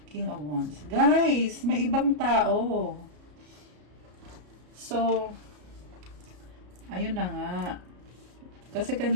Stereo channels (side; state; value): left; late; 33 ms